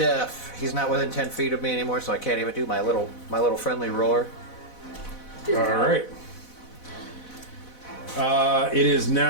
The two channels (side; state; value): right; late; 4.0 ms